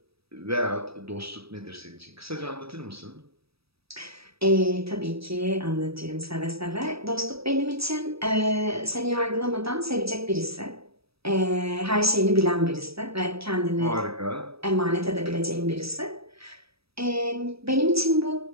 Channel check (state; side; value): late; left; 0.77 ms